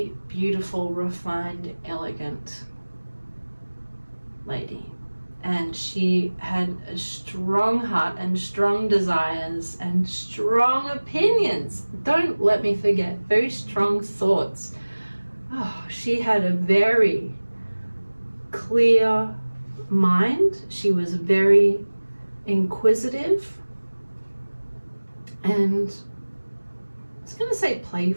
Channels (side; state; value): both; inverted; correlation -1.00